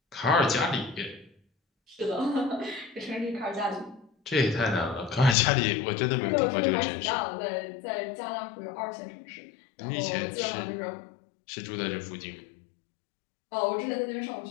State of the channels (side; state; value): right; drops out; at 5.4 s